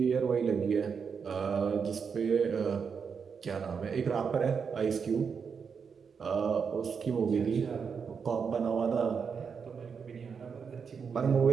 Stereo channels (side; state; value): left; quieter; 6.2 dB